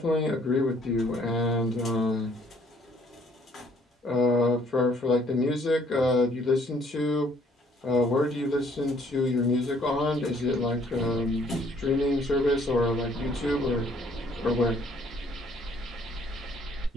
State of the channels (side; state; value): both; normal; correlation 0.62